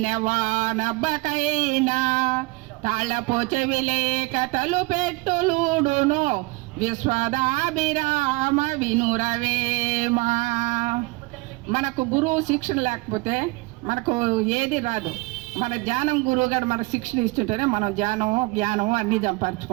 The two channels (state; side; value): quieter; left; 24.3 dB